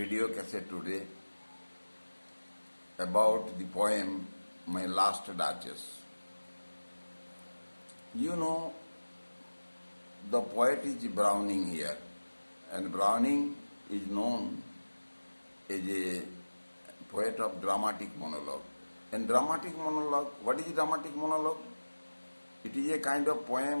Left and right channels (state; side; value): inverted; both; correlation -1.00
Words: cassette today about the poem My Last Duchess. You know, the poet is Browning here, and Browning is known as a poet of dramatic monologue. And dramatic monologue, what is dramatic monologue? It is a kind of